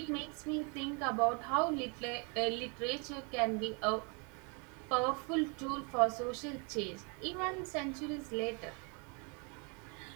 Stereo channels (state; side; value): quieter; left; 33.8 dB